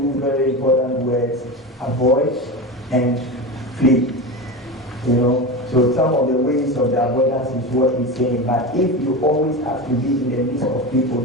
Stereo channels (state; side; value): normal; both; correlation 0.23